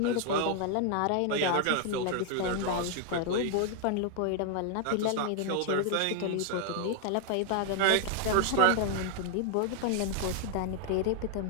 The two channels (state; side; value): different; both; correlation 0.00